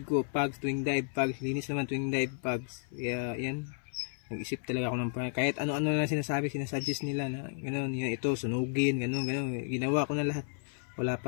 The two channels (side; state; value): right; silent; 56 dB below the other